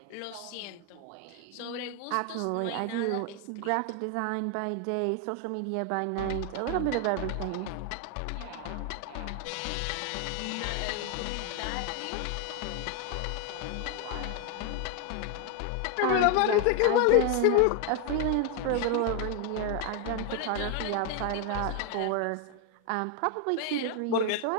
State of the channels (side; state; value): both; different; correlation 0.01